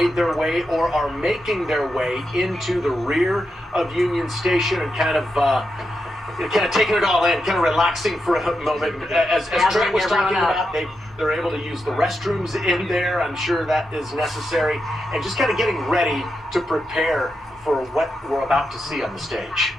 their way or are making their way into the rear of Union Station and kind of taking it all in, kind of relaxing for a moment. As Trent was talking about, they're able to use the restrooms in there. I'm sure that is necessary, and just kind of getting ready to prepare for what we're about to see on the stage.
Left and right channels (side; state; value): both; normal; correlation 0.86